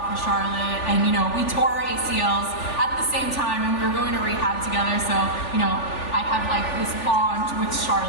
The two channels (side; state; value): right; late; 3.4 ms